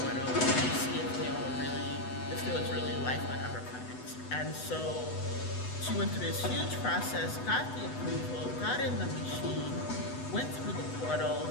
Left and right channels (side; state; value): right; late; 8.0 ms